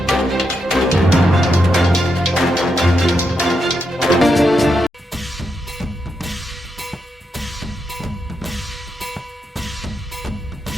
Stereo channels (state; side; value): normal; both; correlation 0.83